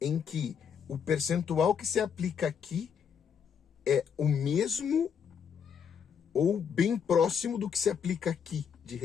em que o percentual que se aplica aqui é o mesmo ou bem próximo do que se aplica aqui de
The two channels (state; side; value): quieter; right; 7.3 dB